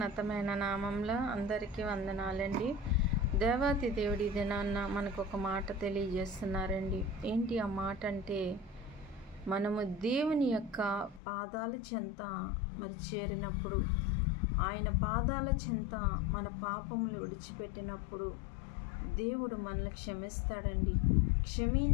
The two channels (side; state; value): right; drops out; at 11.2 s